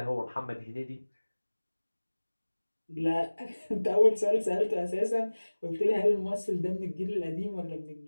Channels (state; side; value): inverted; both; correlation -1.00